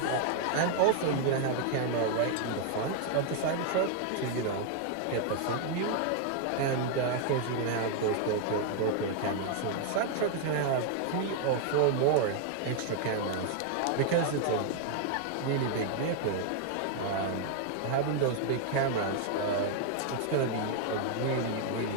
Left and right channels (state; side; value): different; both; correlation 0.00